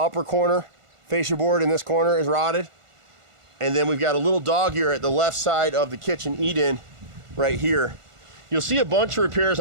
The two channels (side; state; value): left; late; 1.5 ms